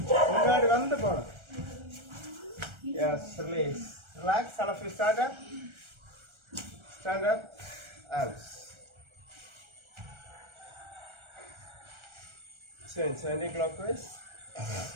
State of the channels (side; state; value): left; late; 1.3 ms